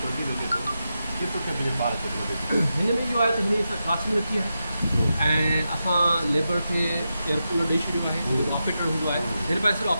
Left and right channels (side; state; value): both; inverted; correlation -0.89